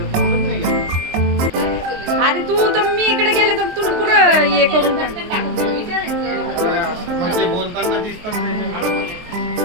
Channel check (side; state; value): left; late; 23 ms